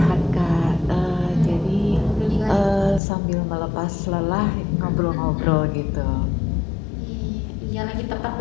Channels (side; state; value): right; drops out; at 3.0 s